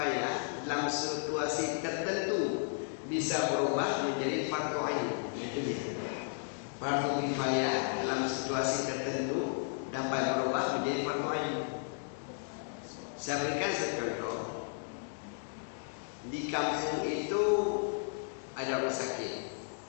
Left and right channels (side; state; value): right; silent; digital silence